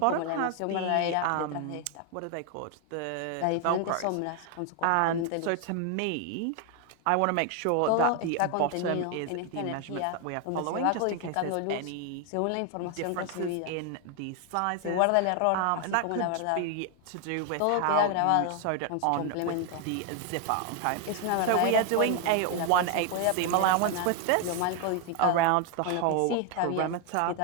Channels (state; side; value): different; both; correlation 0.01